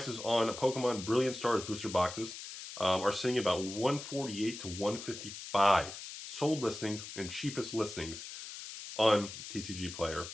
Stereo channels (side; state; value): left; noise; hiss, 10 dB below the sound